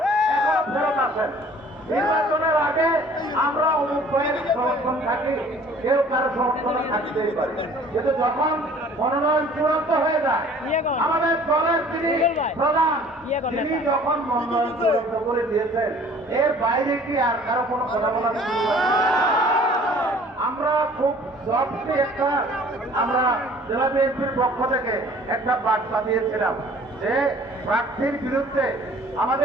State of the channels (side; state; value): both; normal; correlation 0.51